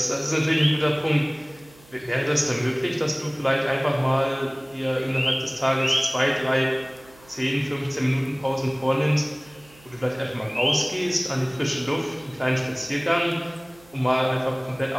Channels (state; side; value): noise; right; hum, 26 dB below the sound